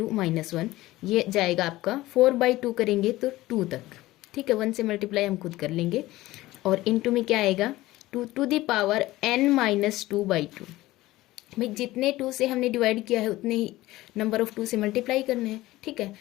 -1, ये जाएगा आपका 4/2 करेंगे तो 2 तक, ठीक है। 1 से मल्टीप्लाई हम खुद कर लेंगे, और इनटू में क्या आएगा 2 to the power n-2/2। भाई जितने 2 से हमने डिवाइड किया है उतने ही नंबर ऑफ 2 से मल्टीप्लाई करने हैं, ठीक है।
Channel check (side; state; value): right; quieter; 17.4 dB